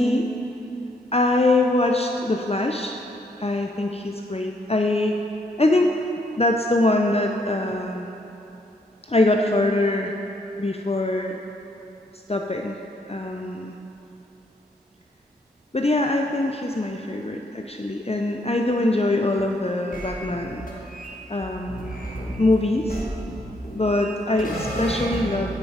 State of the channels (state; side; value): normal; both; correlation 0.71